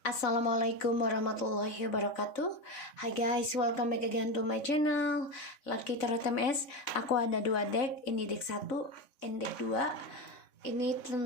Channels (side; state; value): right; late; 3.5 ms